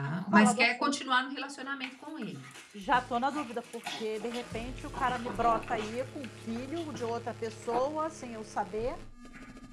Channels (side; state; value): both; identical; correlation 1.00